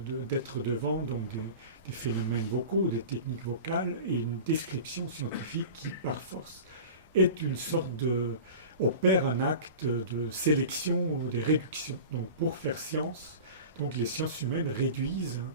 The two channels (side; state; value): both; inverted; correlation -0.35